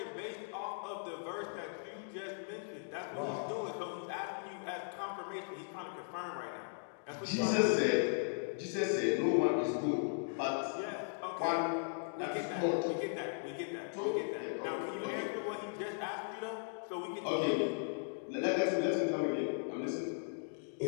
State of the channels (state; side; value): silent; right; digital silence